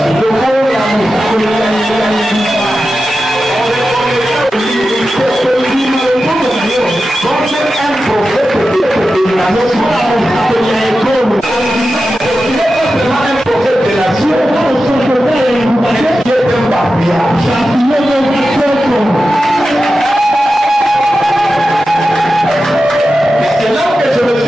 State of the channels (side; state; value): both; normal; correlation 0.92